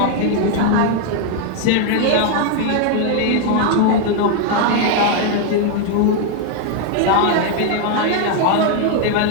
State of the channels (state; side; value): different; both; correlation 0.01